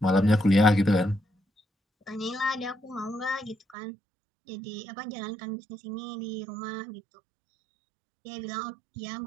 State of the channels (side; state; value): left; drops out; at 3.8 s